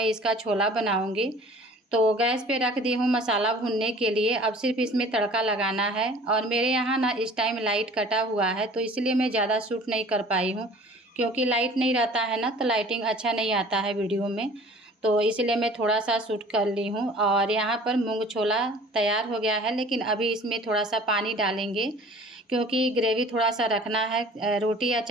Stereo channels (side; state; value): both; normal; correlation 0.48